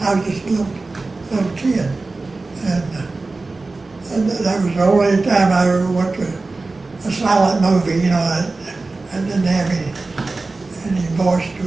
I was just a little kid. And that was the only time I ever went to a silent movie, you know, I didn't have any voice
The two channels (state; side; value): quieter; left; 3.5 dB